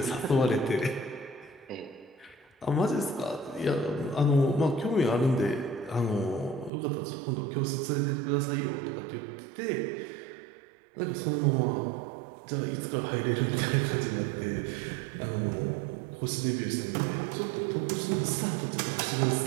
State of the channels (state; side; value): drops out; left; at 6.7 s